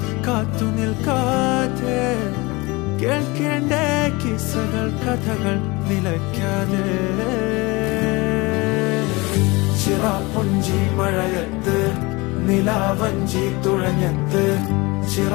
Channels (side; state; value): right; quieter; 24.3 dB